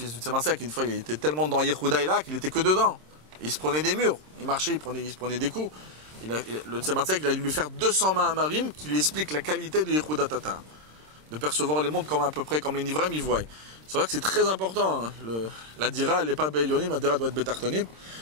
du Tzemar-Tzedek, une fois il était tellement dans Yehuda et là qu'il était que dedans. Il se prenait des murs, il marchait, il se prenait des coups. Le Tzemar-Tzedek, il a dû lui faire 200 mains à Marim qui lui explique la qualité de Yehuda Tata. De percevoir les mondes comme à peu près comme les Nivrem y voient. C'est vrai que c'est très important. Hein. La dira, elle n'est pas Be'elyonim, la dira doit être Betartonim,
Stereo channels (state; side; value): late; left; 26 ms